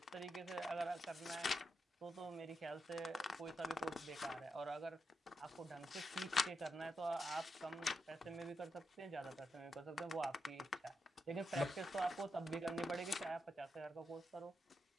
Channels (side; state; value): both; normal; correlation 0.85